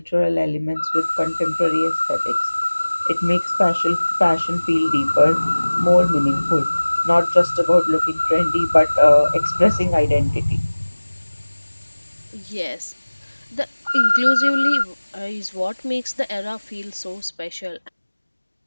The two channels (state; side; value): inverted; both; correlation -1.00